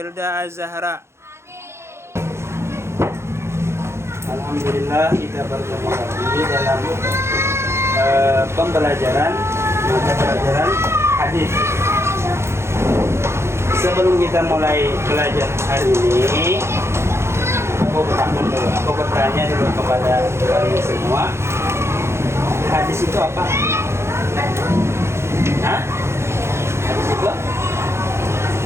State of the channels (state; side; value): late; left; 0.13 ms